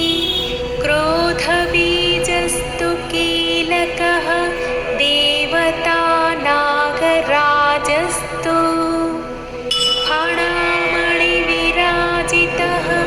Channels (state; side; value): identical; both; correlation 1.00